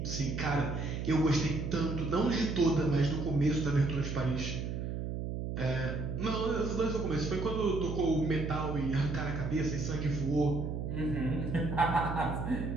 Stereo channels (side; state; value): right; noise; hum, 4 dB below the sound